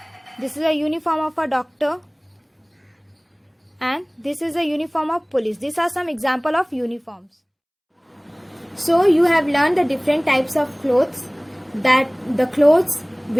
This is a uniform of a doctor, and this is a uniform of police. These are some example of uniforms. So you have learned the different types of clothes, that the clothes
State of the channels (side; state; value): both; identical; correlation 1.00